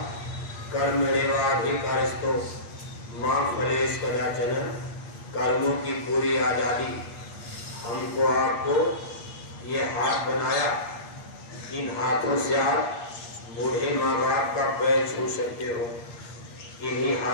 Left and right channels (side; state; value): right; late; 8.5 ms